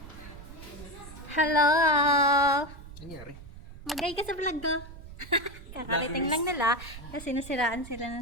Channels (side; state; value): right; noise; rumble, 15 dB below the sound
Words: Hello! Nangyari? Magay ka sa vlog ko. Kakarating lang nila kasi nasiraan sila